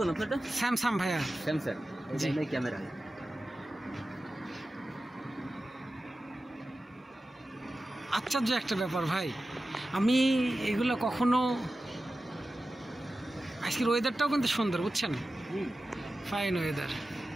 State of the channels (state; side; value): normal; both; correlation 0.94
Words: আপনারটা? স্যামসাং ভাইয়া। স্যামসাং। জি। এই ক্যামেরা। আশ্চর্য একটা ব্যাপার ভাই, আমি এগুলো কখনো। আজকের ওয়েদারটাও কিন্তু সুন্দর, বুঝছেন? Fine weather.